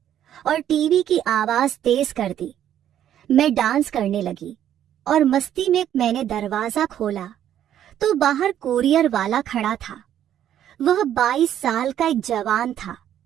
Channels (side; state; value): left; quieter; 10.7 dB